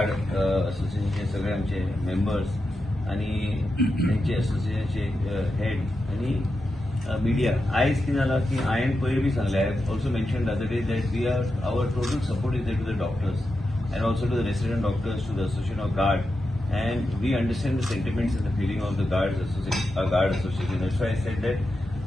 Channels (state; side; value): normal; both; correlation 0.88